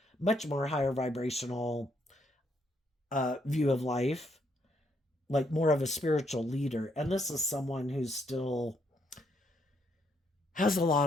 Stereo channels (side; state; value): both; normal; correlation 0.74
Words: much more higher vibrational view of life, like more of a spiritual leader. And this is someone who's still has a